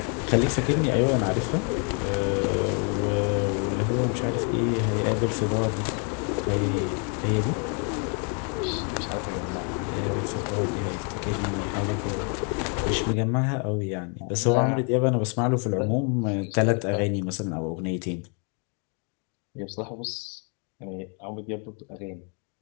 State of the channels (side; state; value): right; quieter; 38.4 dB